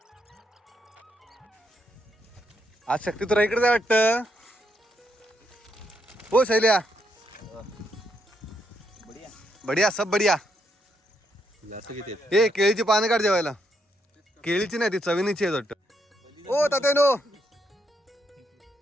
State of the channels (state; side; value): normal; both; correlation 0.77